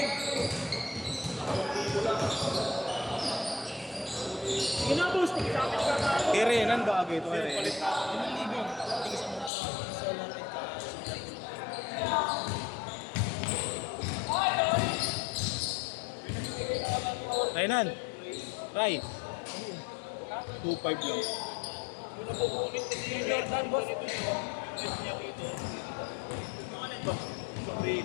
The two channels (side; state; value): right; drops out; at 9.5 s